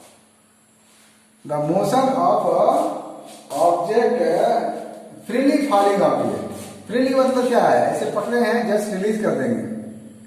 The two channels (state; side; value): identical; both; correlation 1.00